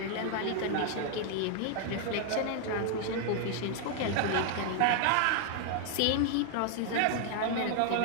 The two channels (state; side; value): different; both; correlation 0.00